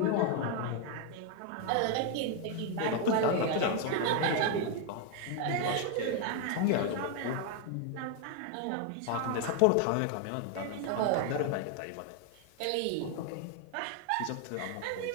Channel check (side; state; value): both; different; correlation 0.01